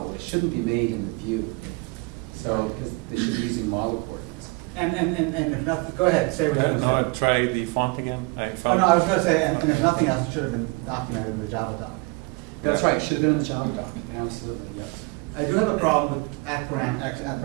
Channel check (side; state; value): left; quieter; 28.0 dB